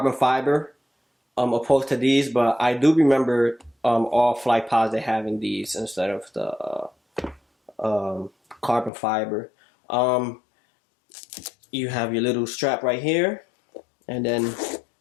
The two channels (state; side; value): drops out; right; at 8.9 s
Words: fiber opposed to these, but I do remember all Flightposite having these instead of the carbon fiber. You have your little strap right here, and then